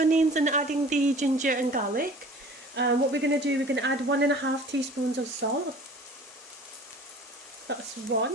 and adding the ginger and garlic, what we're going to do, we're going to add 1.5 teaspoons of salt. That's 1.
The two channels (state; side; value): normal; both; correlation 0.46